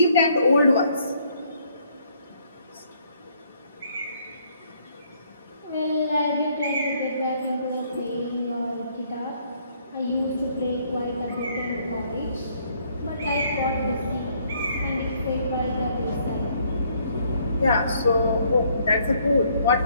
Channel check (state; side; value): inverted; both; correlation -0.66